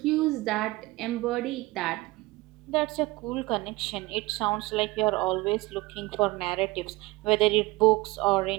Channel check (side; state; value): left; quieter; 21.1 dB